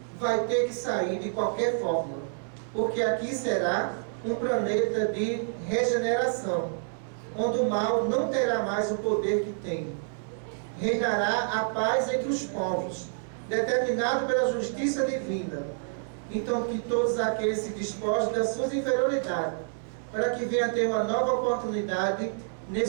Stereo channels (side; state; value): left; silent; 59 dB below the other